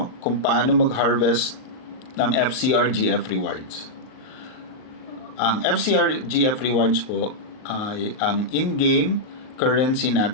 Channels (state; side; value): late; right; 38 ms